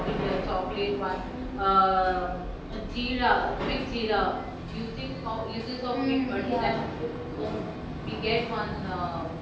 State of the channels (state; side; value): identical; both; correlation 1.00